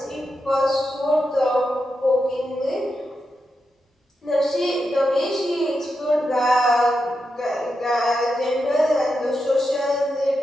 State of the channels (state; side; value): normal; both; correlation 0.87